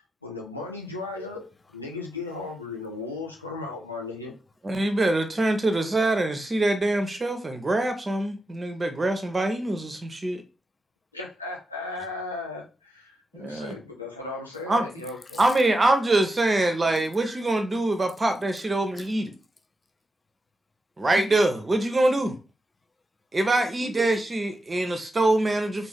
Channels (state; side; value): normal; both; correlation 0.88